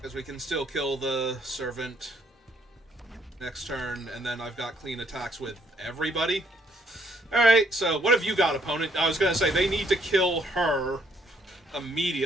we can still kill the servant next turn, and then I've got clean attacks with everybody. Alright, so what have you got, opponent? I was going to say, they need to kill her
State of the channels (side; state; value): both; normal; correlation 0.68